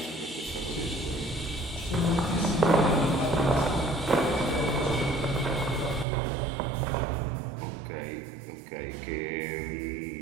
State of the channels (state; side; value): drops out; left; at 6.1 s